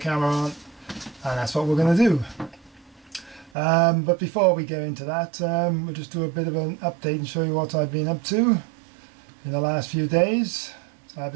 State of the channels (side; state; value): left; drops out; at 3.5 s